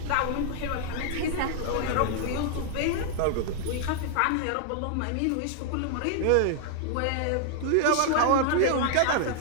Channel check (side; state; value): both; different; correlation 0.00